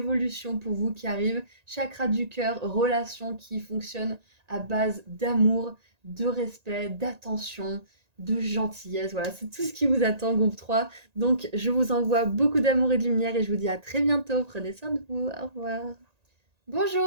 pour vous qui arrivent. Chakra du cœur, relation qui fonctionne à base d'amour, de respect, d'attention, de gentillesse. Voilà, c'est tout ce qui vous attend, groupe 3. Donc je vous envoie beaucoup d'amour et de lumière et je vous dis à très bientôt. Prenez soin de vous. Au revoir.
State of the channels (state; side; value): late; left; 1.9 ms